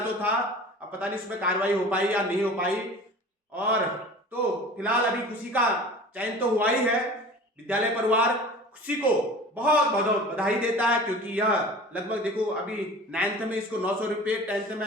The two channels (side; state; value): both; normal; correlation 0.40